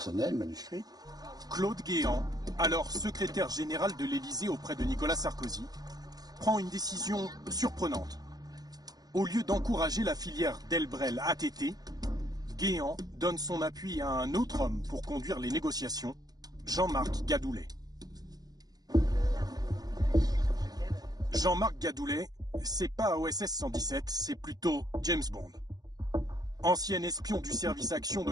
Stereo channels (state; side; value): late; left; 0.19 ms